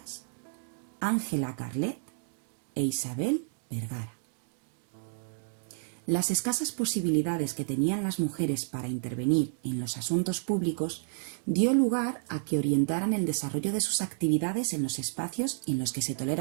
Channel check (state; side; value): silent; left; digital silence